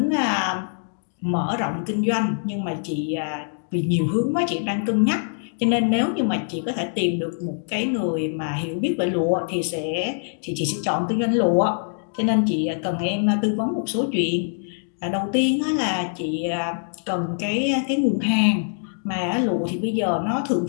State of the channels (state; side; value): silent; right; digital silence